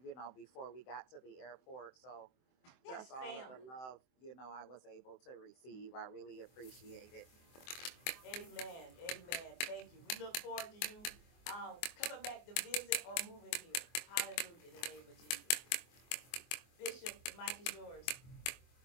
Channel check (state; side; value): late; right; 23 ms